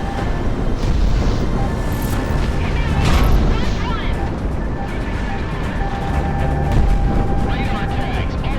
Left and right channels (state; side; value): identical; both; correlation 1.00